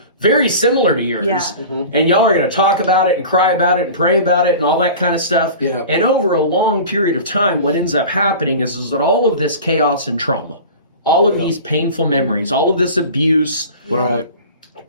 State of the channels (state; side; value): inverted; both; correlation -0.37